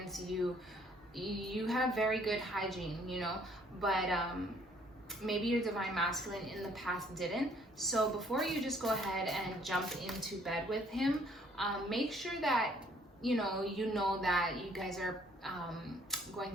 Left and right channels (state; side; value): normal; both; correlation 0.62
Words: You have very good hygiene, you know, but maybe your divine masculine in the past didn't. So before you just go ahead and jump into bed with him, make sure that you know that you guys are going